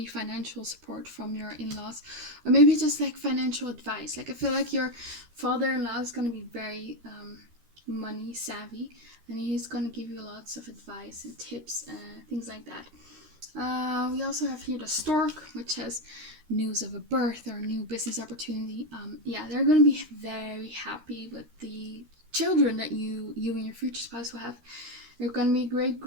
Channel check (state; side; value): late; left; 13 ms